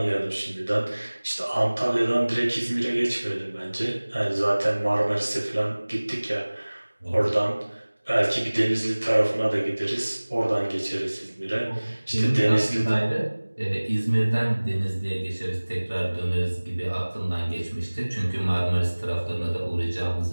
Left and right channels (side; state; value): both; inverted; correlation -1.00